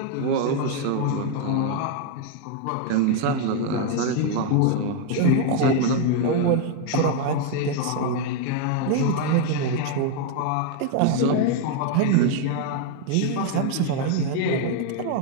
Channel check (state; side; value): different; both; correlation 0.01